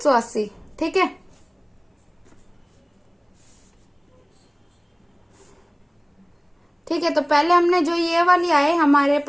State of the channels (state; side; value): identical; both; correlation 1.00